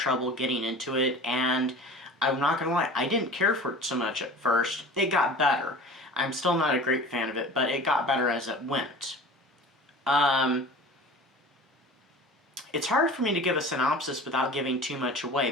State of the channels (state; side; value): normal; both; correlation 0.39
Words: getting into it, and I'm not gonna lie, I didn't care for it so much at first. It got better. I'm still not a great fan of it, but it got better as it went. It's hard for me to give a synopsis without giving too much